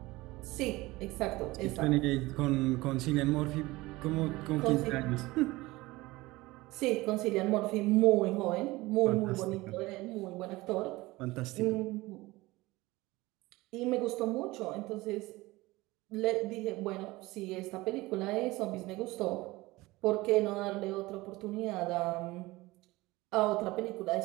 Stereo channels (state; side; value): quieter; left; 20.3 dB